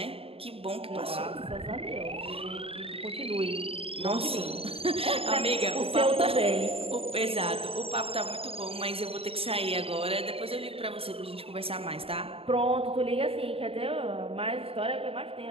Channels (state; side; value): late; left; 0.27 ms